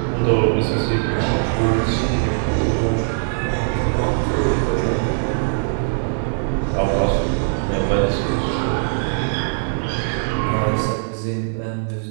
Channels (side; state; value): left; silent; 62 dB below the other